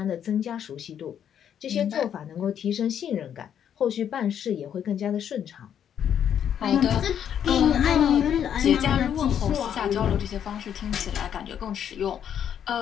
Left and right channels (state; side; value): quieter; right; 9.1 dB